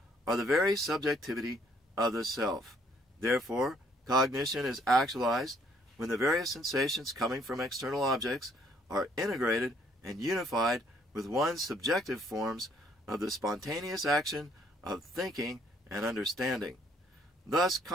are the very subjectivity of the self. Therefore, cognition is actualized when the various sensations coming from external objects are integrated and unified with one's subjective forms of the spontaneous action of thinking and understanding. Thus,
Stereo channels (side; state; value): both; normal; correlation 0.65